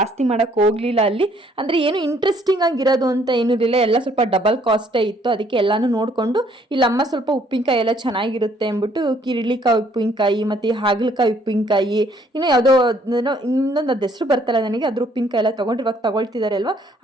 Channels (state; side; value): normal; both; correlation 0.64